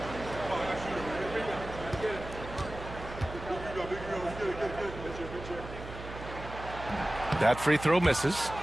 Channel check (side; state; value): right; noise; hum, 11 dB below the sound